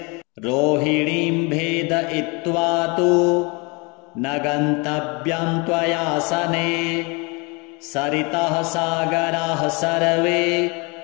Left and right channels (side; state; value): right; quieter; 29.6 dB